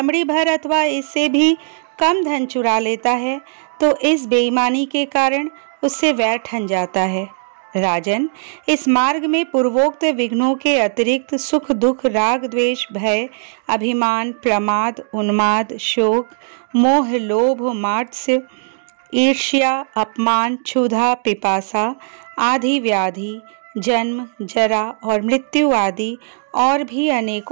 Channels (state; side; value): silent; left; digital silence